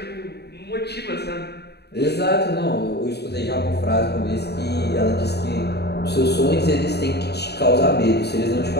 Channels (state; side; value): late; right; 0.48 ms